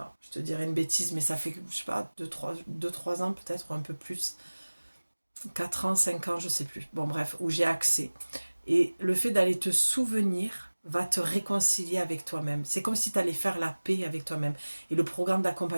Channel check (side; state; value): both; inverted; correlation -1.00